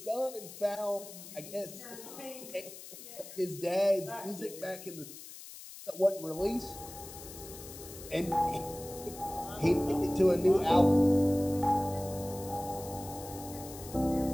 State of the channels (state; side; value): noise; left; hiss, 14 dB below the sound